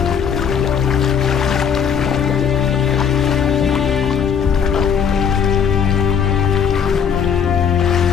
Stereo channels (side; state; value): right; quieter; 7.2 dB